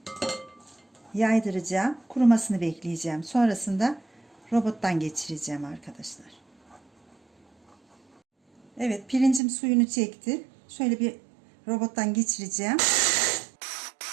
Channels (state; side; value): drops out; left; at 9.4 s